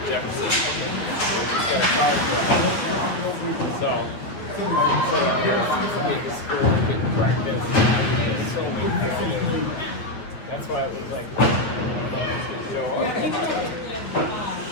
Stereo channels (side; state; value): right; late; 9.2 ms